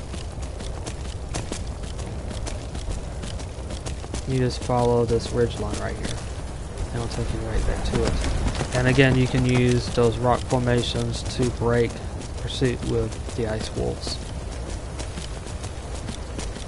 You just follow this ridge line right here, and it'll take you right there to it. And again, you can use those rock formations to break pursuit with the ice wolves,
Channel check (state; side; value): identical; both; correlation 1.00